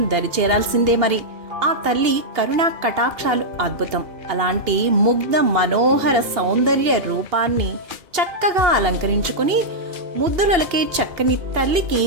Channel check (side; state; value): left; late; 2.8 ms